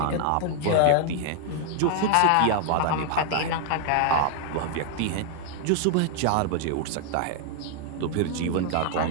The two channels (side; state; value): both; different; correlation 0.00